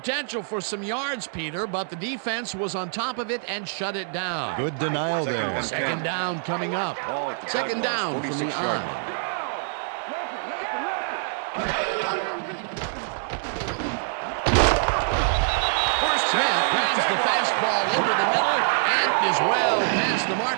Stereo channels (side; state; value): left; silent; 59 dB below the other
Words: for some yards, Peter, but the defense was on top of it and shut it down. Good denial there. Second down coming up. Second down from the eye. Smith grabs the fastball over the middle and is well past the